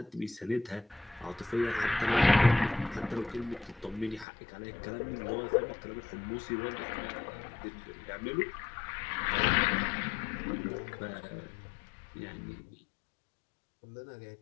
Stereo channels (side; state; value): right; drops out; at 4.2 s